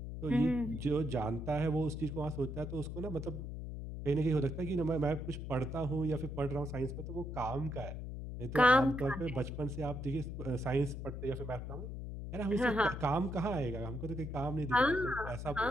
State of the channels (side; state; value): left; noise; hum, 7 dB below the sound